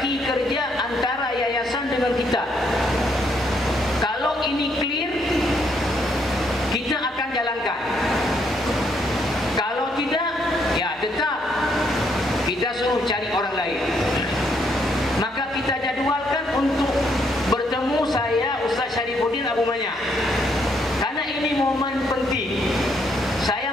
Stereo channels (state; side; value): normal; both; correlation 0.73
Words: kerja antara yayasan dengan kita. Kalau ini clear, kita akan jalankan. Kalau tidak, ya tetap kita suruh cari orang lain. Maka kita jadualkan untuk bertemu saya, Ustaz Syarifuddin Abu Manya. Karena ini momen penting.